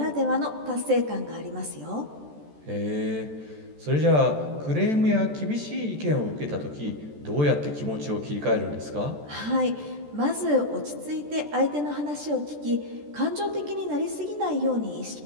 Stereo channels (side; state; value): left; late; 14 ms